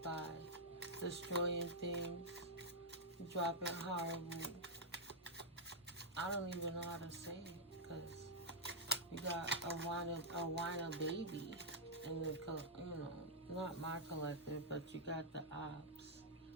by destroying things, dropping horrible. I don't even know how to say it, because you got a whiner baby in the, not my collective, but you got the ops,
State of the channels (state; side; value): normal; both; correlation -0.07